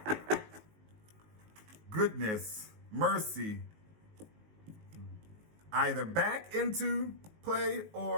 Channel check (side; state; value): left; late; 19 ms